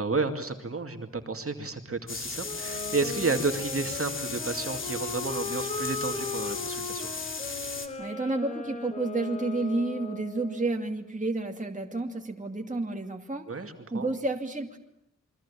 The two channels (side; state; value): both; normal; correlation 0.37